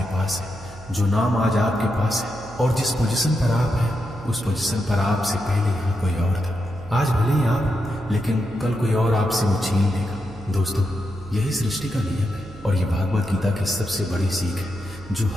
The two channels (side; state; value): right; noise; hum, 18 dB below the sound